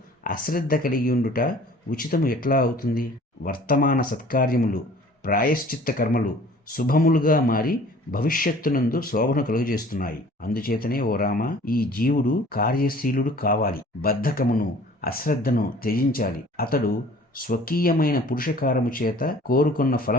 అశ్రద్ధ కలిగి ఉండుట ఉచితము ఎట్లా అవుతుంది? వర్తమాన సత్కార్యములు, ప్రాయశ్చిత్త కర్మలు శుభములుగా మారి భవిష్యత్తునందు శోభను కలుగజేస్తున్నాయి. అందుచేతనే ఓ రామ, ఈ జీవుడు కార్యశీలుడు కావాలి. బద్ధకమును, అశ్రద్ధను త్యజించాలి. అతడు స్వకీయమైన పురుషకారము చేత కోరుకున్న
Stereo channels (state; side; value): normal; both; correlation 0.50